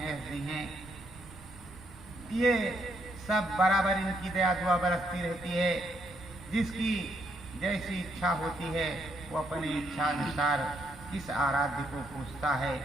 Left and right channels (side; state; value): right; noise; rumble, 20 dB below the sound